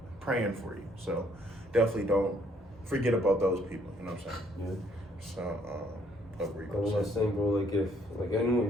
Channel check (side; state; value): both; normal; correlation 0.66